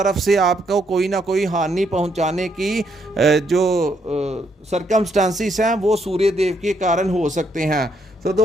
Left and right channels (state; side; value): normal; both; correlation 0.74